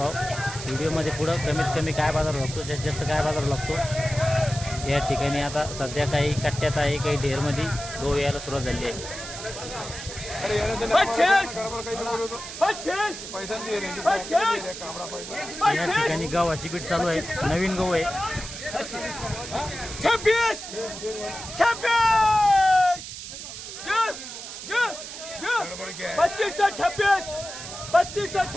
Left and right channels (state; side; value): noise; right; hiss, 10 dB below the sound